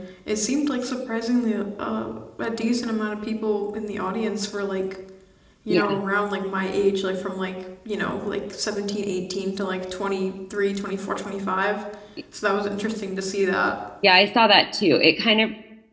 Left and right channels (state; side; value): identical; both; correlation 1.00